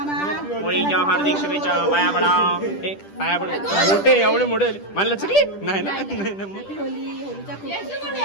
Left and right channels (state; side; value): late; right; 10 ms